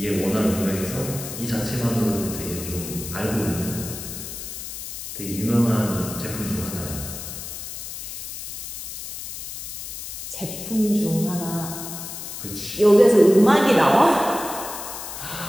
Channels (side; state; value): left; noise; hiss, 9 dB below the sound